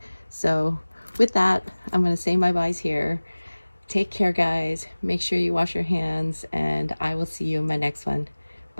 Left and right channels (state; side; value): inverted; both; correlation -1.00